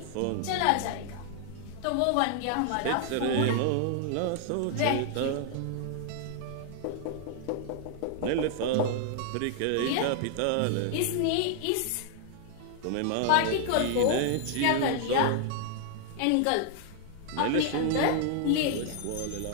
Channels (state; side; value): different; both; correlation 0.00